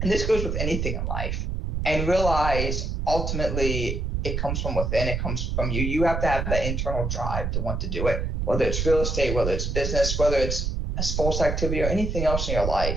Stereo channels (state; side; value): noise; right; rumble, 1 dB below the sound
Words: And this goes with anything in life. And realize ultimately it comes from within. It comes from you. You have to have that internal drive to want to do it. Whether it's real estate, whether it's business, whether it's a sports activity or anything else in your